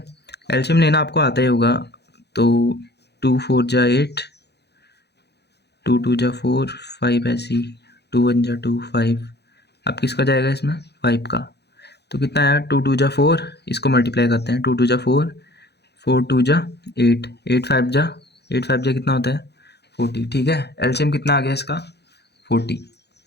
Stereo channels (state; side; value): late; right; 0.48 ms